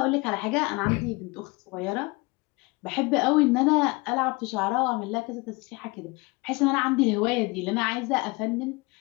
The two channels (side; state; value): right; quieter; 25.6 dB